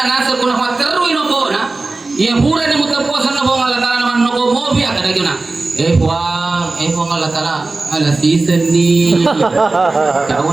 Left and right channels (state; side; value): quieter; left; 3.4 dB